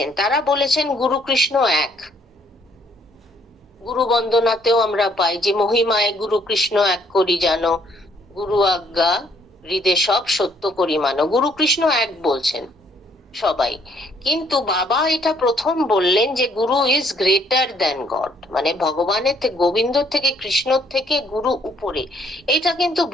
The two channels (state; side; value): normal; both; correlation 0.66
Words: তারা বলেছেন গুরু কৃষ্ণ এক। গুরু বন্দনাতেও আমরা পাই যে মহিমায় গুরু কৃষ্ণ এক করি জানো, গুরু আজ্ঞা হৃদে সব সত্য করি মানো। গুরু কৃষ্ণ এক বলছেন সবাই, কিন্তু বাবা এটা প্রথম বললেন যে গুরু ইজ গ্রেটার দ্যান গড, মানে ভগবানের থেকে, গোবিন্দ থেকে, কৃষ্ণর থেকে গুরু উপরে। এটা কিন্তু